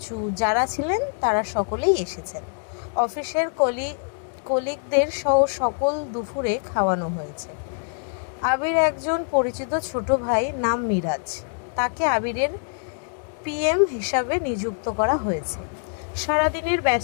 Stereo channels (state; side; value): silent; right; 62 dB below the other